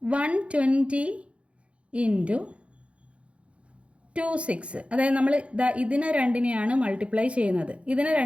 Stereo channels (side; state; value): left; late; 0.061 ms